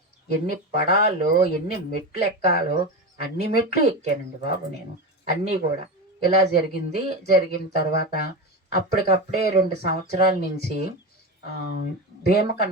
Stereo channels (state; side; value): normal; both; correlation 0.20